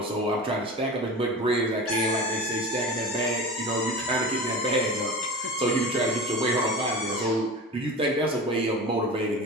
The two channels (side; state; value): both; normal; correlation 0.32